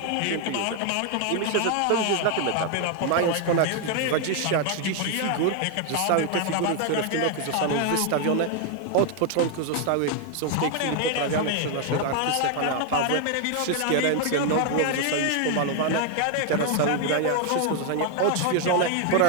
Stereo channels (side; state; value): both; different; correlation 0.01